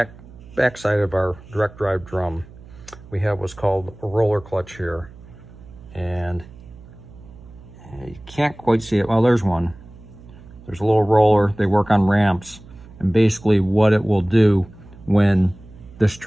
side of our direct drive drum, we have what's called a roller clutch here, and you can't quite see it. Well, there's one. There's a little roller. They work on ramps, and basically what it will do when this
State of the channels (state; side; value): noise; right; hum, 20 dB below the sound